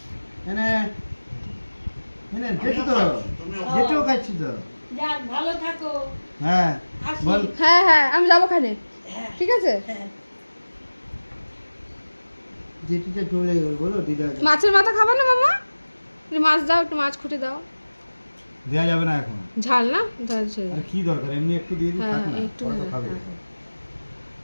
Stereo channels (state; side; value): inverted; both; correlation -1.00